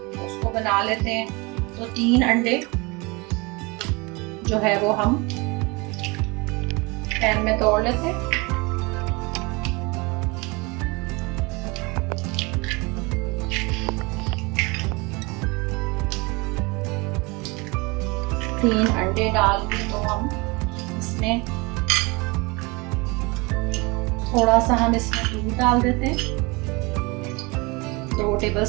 उसको बना लेते हैं। तो 3 अंडे जो है वो हम पैन में तोड़ लेते हैं। तीन अंडे डाल के तो हम इसमें थोड़ा सा दूध डाल देते हैं। 2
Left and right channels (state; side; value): quieter; left; 26.6 dB